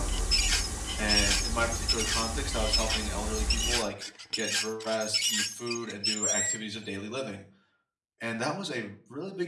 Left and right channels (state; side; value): identical; both; correlation 1.00